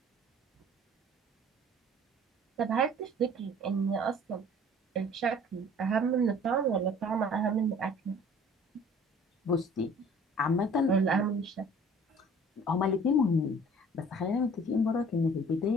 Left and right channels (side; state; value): both; normal; correlation 0.50